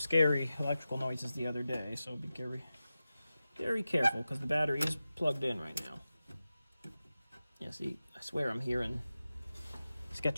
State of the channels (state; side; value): inverted; both; correlation -0.94